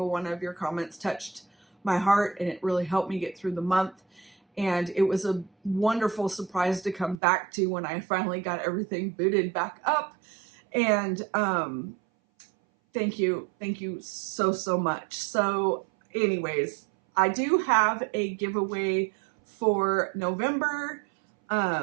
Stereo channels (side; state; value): left; drops out; at 7.2 s